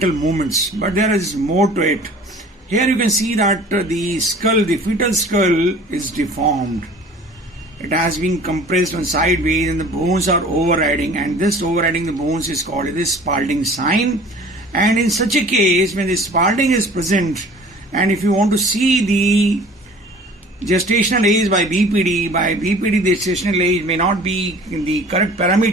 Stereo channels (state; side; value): normal; both; correlation 0.47